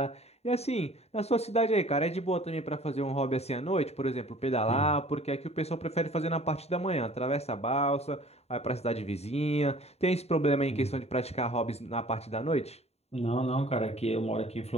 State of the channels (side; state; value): right; late; 0.30 ms